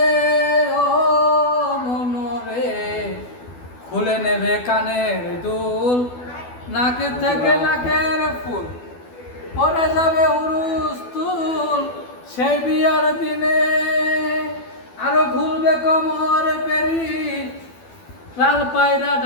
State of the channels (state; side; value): late; right; 12 ms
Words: ও মনরে খুলে নেবে কানের দুল নাক থেকে নাকের ফুল পরে যাবে হুরুস তুল সেই বিয়ার দিনে আরো খুলবে কোমর পেরি লাল পায়রা